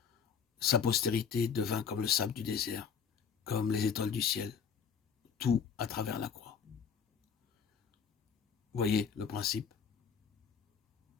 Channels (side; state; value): right; quieter; 6.8 dB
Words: Sa postérité devint comme le sable du désert, comme les étoiles du ciel, tout à travers la croix. Voyez le principe?